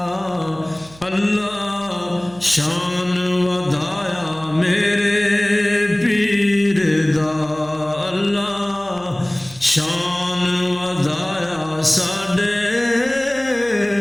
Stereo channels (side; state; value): right; noise; hum, 23 dB below the sound